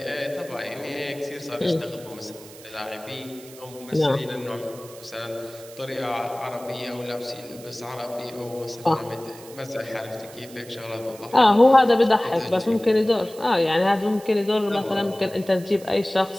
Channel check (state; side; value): noise; right; hiss, 19 dB below the sound